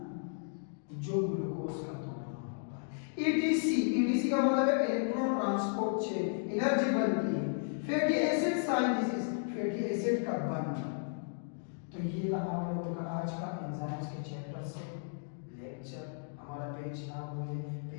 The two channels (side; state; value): right; silent; digital silence